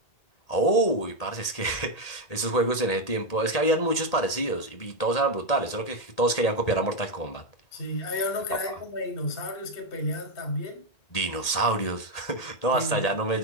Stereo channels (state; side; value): late; right; 1.8 ms